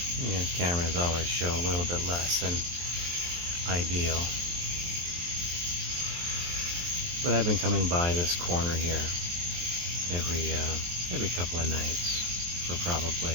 You know, cameras always show a little bit less than ideal. But I've been coming by this corner here every couple of nights for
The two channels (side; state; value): left; late; 23 ms